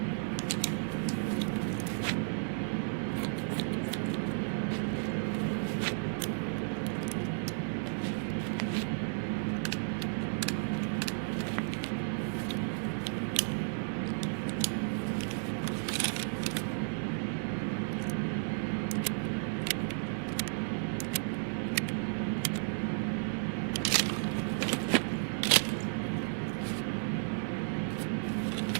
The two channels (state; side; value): silent; left; digital silence